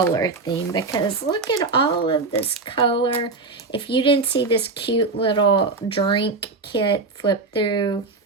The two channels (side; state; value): left; quieter; 3.8 dB